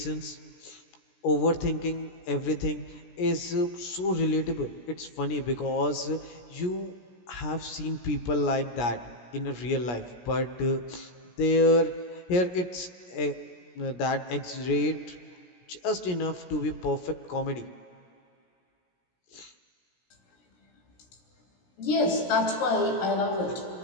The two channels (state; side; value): late; right; 17 ms